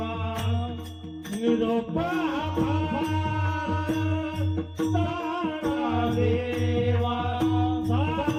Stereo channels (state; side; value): identical; both; correlation 1.00